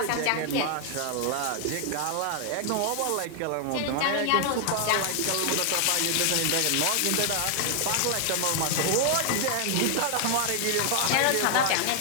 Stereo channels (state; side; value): different; both; correlation 0.00